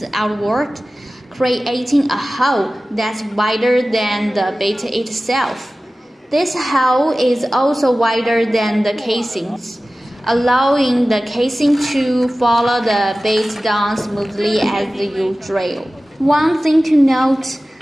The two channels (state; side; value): normal; both; correlation 0.96